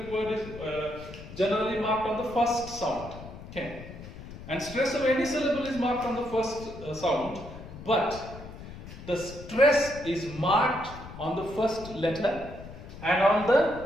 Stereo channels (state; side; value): noise; left; rumble, 14 dB below the sound